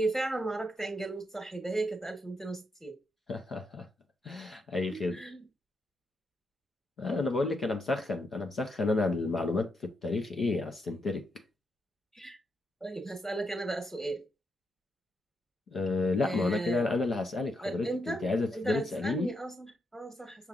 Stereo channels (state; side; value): normal; both; correlation 0.80